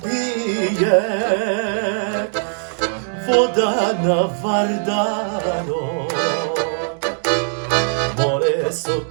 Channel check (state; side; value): silent; left; digital silence